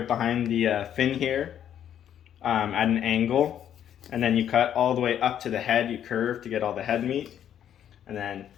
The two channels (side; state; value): right; quieter; 9.9 dB